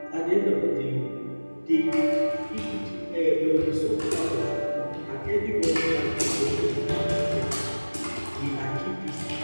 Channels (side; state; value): both; inverted; correlation -1.00